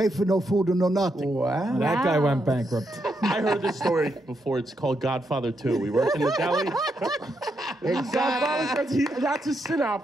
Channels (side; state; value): both; normal; correlation 0.81